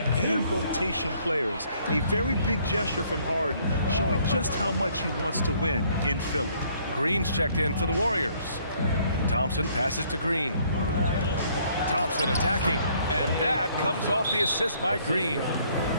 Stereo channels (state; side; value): inverted; both; correlation -0.64